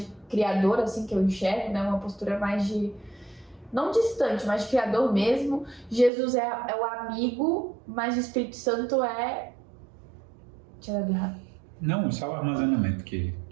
criador, assim, que eu enxergo, né? Uma postura mais de... não distante, mas de criador mesmo. Jesus é o amigo, mas o Espírito Santo é... Deixa eu ver errado. Não, só o armazenamento que...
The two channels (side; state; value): left; drops out; at 6.1 s